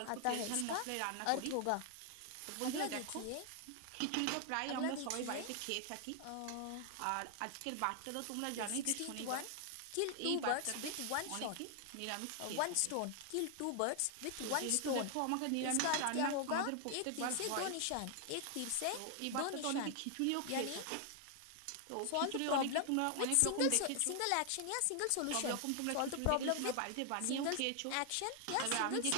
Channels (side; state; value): both; different; correlation 0.00